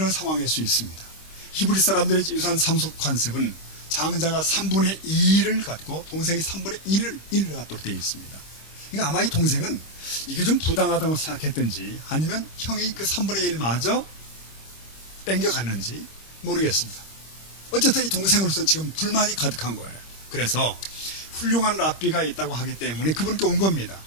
상황일 수 있습니다. 히브리 사람들의 유산 상속 관습은 장자가 3분의 2를 갖고 동생이 3분의 1을 갖도록 되어 있습니다. 그러니까 아마 이 동생은 이게 좀 부당하다고 생각했든지 아니면 형이 그 3분의 1마저 땡겨갔는지 모르겠습니다. 어쨌든 이 동생으로서는 지금 불만이 가득한 거예요. 그래서 훌륭한 랍비가 있다고 하기 때문에 그분께 온 겁니다.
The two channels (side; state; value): right; late; 26 ms